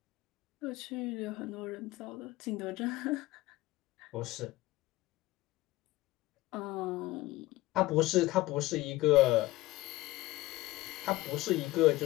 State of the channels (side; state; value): right; quieter; 18.5 dB